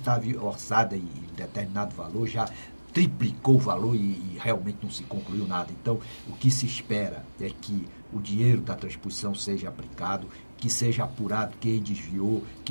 orçada em determinado valor, já triplicou o valor e realmente não se concluiu nada. Então, o que se espera é que o dinheiro da transposição seja aplicado, que seja apurado quem desviou,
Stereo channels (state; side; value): inverted; both; correlation -1.00